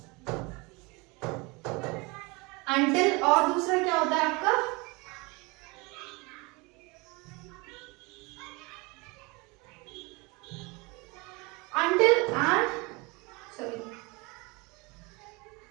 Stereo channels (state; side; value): quieter; left; 26.7 dB